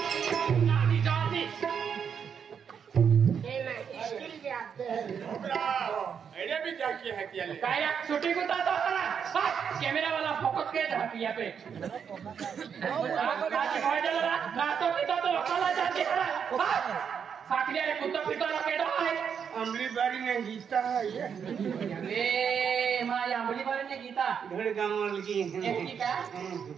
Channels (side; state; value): left; quieter; 7.2 dB